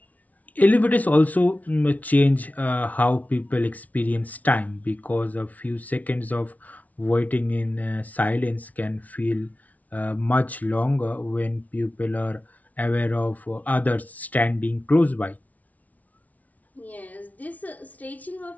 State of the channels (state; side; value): late; right; 0.072 ms